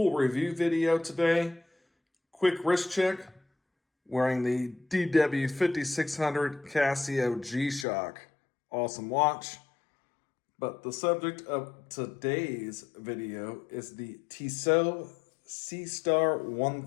review video today. Quick wrist check, wearing the DW5600 Casio G-Shock. Awesome watch. But the subject of today's video is the Tissot Seastar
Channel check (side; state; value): right; drops out; at 7.9 s